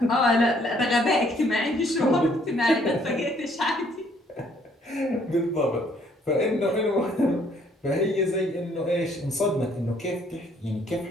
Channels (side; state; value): both; normal; correlation 0.64